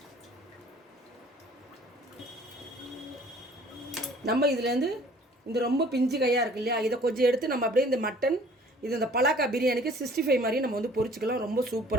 நம்ம இதுலேருந்து இந்த ரொம்ப பிஞ்சு கையாக இருக்கு இல்லையா, இதை கொஞ்சம் எடுத்து நம்ம அப்படியே இந்த மட்டன் இது இந்த பலாக்கா பிரியாணிக்கு 65 மாதிரி நம்ம வந்து பொரிச்சிக்கலாம். ரொம்ப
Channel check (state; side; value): normal; both; correlation 0.53